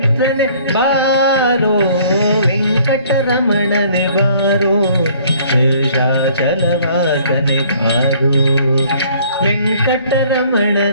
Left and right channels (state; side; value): inverted; both; correlation -0.57